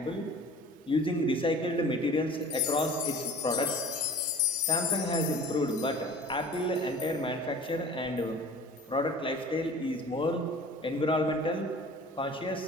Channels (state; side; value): normal; both; correlation 0.44